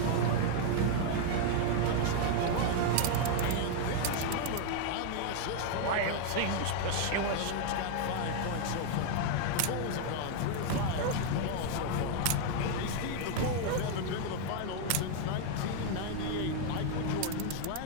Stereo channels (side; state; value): both; different; correlation 0.00